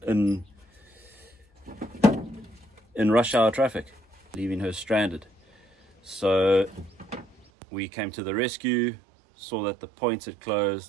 rush hour traffic, leaving her stranded. So we came to the rescue, saw that the points had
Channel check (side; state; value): left; drops out; at 7.5 s